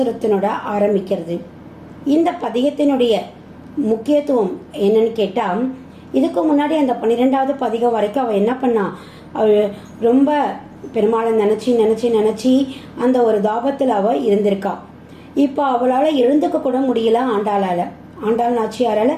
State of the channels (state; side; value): identical; both; correlation 1.00